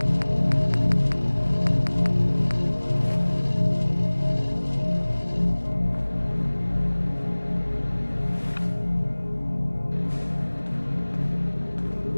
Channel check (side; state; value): both; inverted; correlation -1.00